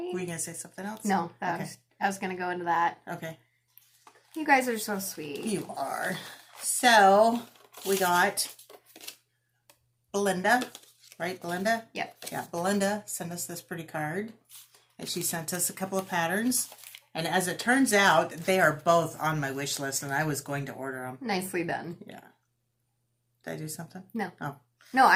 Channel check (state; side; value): identical; both; correlation 1.00